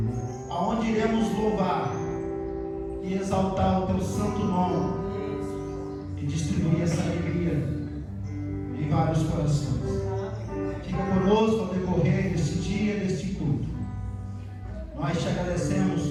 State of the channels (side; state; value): both; identical; correlation 1.00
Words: aonde iremos louvar e exaltar o teu santo nome e distribuir essa alegria em vários corações. Fica conosco ao decorrer deste dia, deste culto. Nós te agradecemos